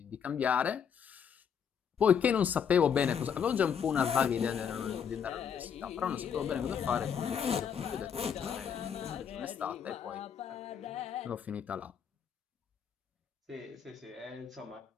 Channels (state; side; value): quieter; right; 7.6 dB